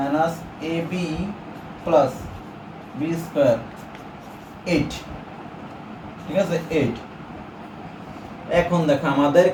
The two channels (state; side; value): identical; both; correlation 1.00